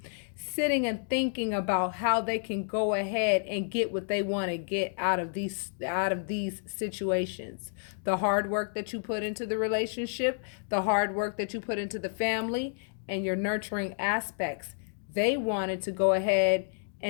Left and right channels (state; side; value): silent; right; digital silence